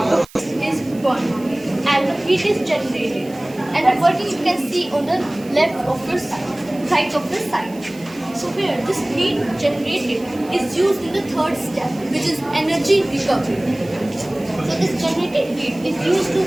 of. Is burned and heat is generated, and the working you can see on the left of your side, right of the side. So here this heat generated is used in the third step, which is energy recovery. So this generated heat is used to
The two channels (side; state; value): right; noise; hiss, 23 dB below the sound